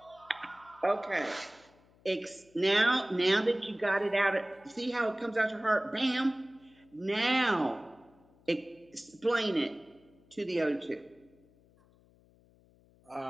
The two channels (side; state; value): left; noise; hum, 30 dB below the sound